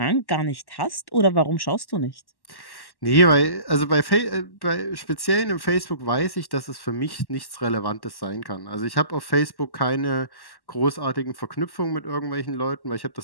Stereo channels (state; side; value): late; right; 1.1 ms